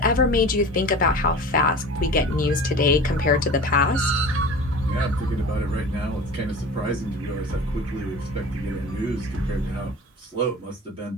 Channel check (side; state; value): both; normal; correlation 0.37